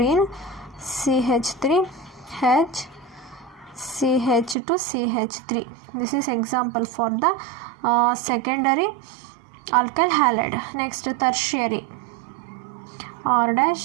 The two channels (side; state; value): left; drops out; at 4.5 s